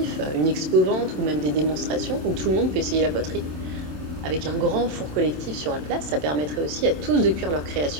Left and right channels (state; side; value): late; left; 27 ms